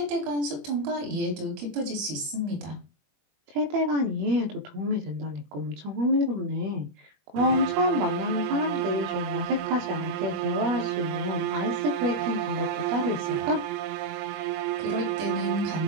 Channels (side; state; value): left; late; 21 ms